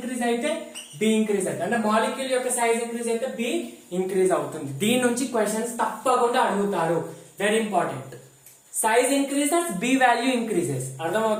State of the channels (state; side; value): identical; both; correlation 1.00